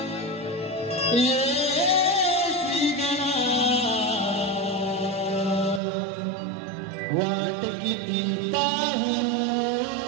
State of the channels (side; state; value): left; drops out; at 5.8 s